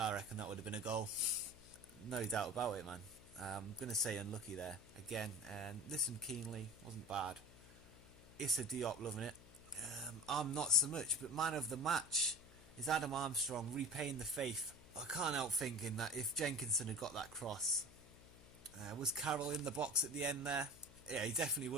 reckon that would have been a goal. No doubt about it, man. I'm going to say unlucky there. Again, and listen keenly. Wasn't bad. Issa Diop loving it. I'm not so much, but man of the match is Adam Armstrong, repaying the faith. I can't help thinking that if Jenkinson had got that cross, was Carroll in the box at the end there? Yeah, he definitely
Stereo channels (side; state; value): left; noise; hum, 20 dB below the sound